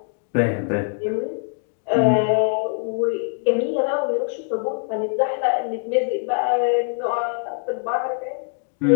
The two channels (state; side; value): silent; right; 58 dB below the other